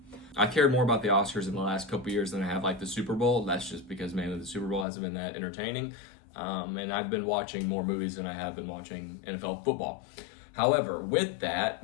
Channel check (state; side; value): drops out; right; at 4.9 s